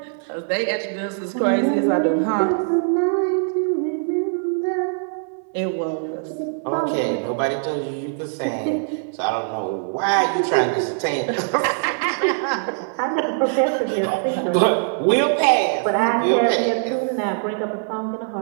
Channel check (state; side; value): silent; left; 64 dB below the other